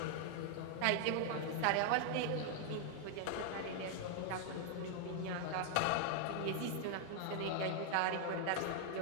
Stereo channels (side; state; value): both; different; correlation 0.00